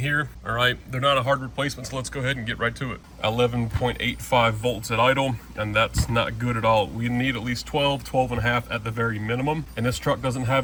all right? They're not a hard replacement, so let's go ahead and get right to it. 11.85 volts at idle, and that's not good at all. We need at least 12 and a half at the very minimum. And this truck doesn't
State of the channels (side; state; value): both; identical; correlation 1.00